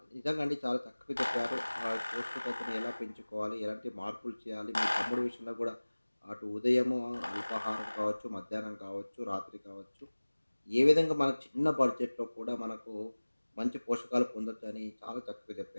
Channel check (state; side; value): inverted; both; correlation -1.00